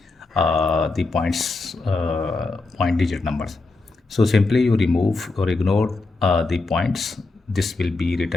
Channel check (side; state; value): right; quieter; 3.5 dB